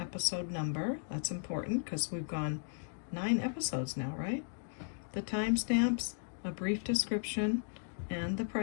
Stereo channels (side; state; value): right; silent; digital silence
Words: number. That's important because we've gone 9 episodes now, right? The timestamps, a brief description, and the